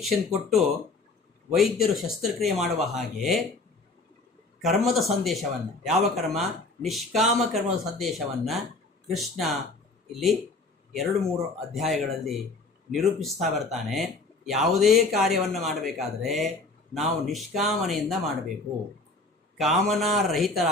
ಕೊಟ್ಟು ವೈದ್ಯರು ಶಸ್ತ್ರಕ್ರಿಯೆ ಮಾಡುವ ಹಾಗೆ ಕರ್ಮದ ಸಂದೇಶವನ್ನು, ಯಾವ ಕರ್ಮ? ನಿಷ್ಕಾಮ ಕರ್ಮದ ಸಂದೇಶವನ್ನು ಕೃಷ್ಣ ಇಲ್ಲಿ 2-3 ಅಧ್ಯಾಯಗಳಲ್ಲಿ ನಿರೂಪಿಸ್ತಾ ಬರ್ತಾನೆ. ಯಾವುದೇ ಕಾರ್ಯವನ್ನು ಮಾಡಬೇಕಾದರೆ ನಾವು ನಿಷ್ಕಾಮನೆಯಿಂದ ಮಾಡಬೇಕು,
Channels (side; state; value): right; quieter; 3.4 dB